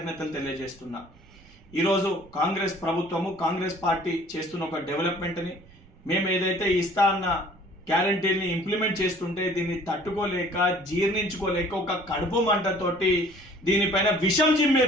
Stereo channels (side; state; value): right; noise; rumble, 25 dB below the sound